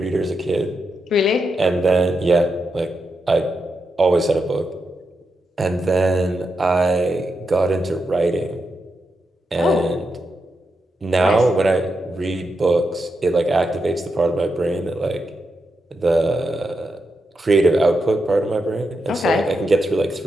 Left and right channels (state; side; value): normal; both; correlation 0.86